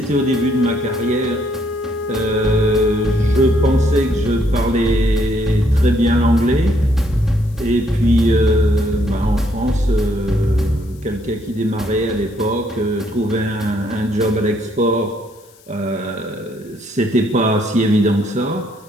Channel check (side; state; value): left; noise; hiss, 28 dB below the sound